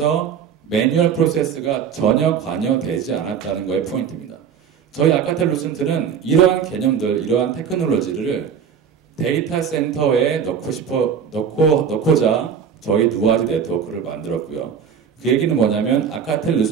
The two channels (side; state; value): left; quieter; 7.4 dB